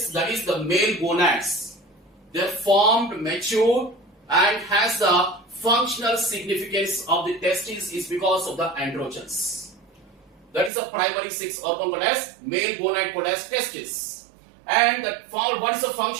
that is the male gonads. They are formed, matured, and has the functional significance of the testes is because of the androgens. That is the primary sex organ called as male gonad called as testis. And what is the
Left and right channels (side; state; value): left; drops out; at 10.7 s